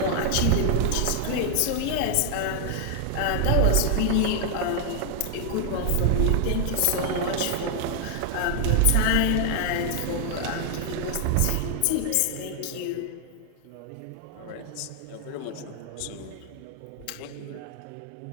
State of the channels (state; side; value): different; both; correlation 0.00